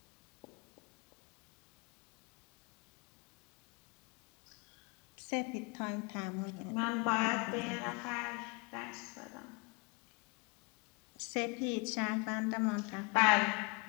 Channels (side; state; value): right; quieter; 30.1 dB